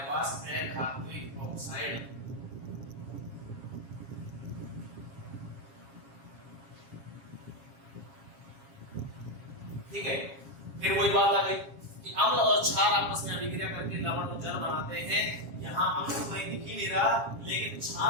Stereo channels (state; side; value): late; left; 7.3 ms